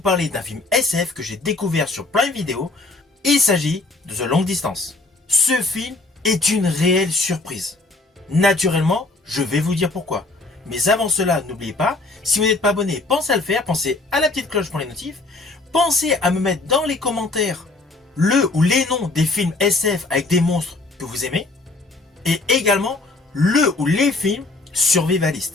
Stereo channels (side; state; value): right; quieter; 3.2 dB